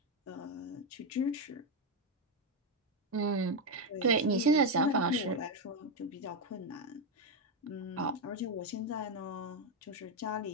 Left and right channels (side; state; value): both; normal; correlation 0.05